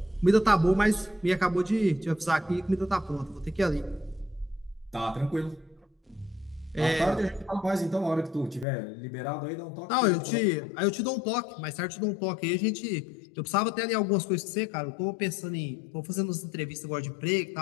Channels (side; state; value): right; drops out; at 8.7 s